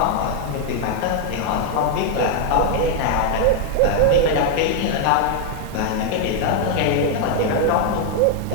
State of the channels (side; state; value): both; different; correlation 0.00